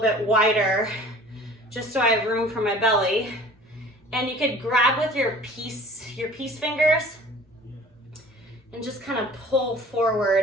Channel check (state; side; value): normal; both; correlation 0.47